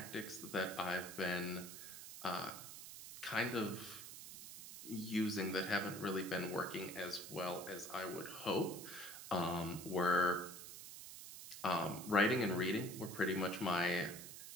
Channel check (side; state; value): right; noise; hiss, 11 dB below the sound